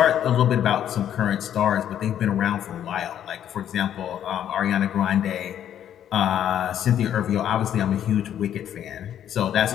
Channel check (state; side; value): quieter; right; 10.2 dB